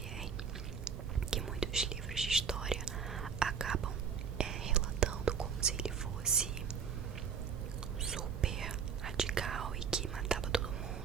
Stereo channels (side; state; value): left; quieter; 6.6 dB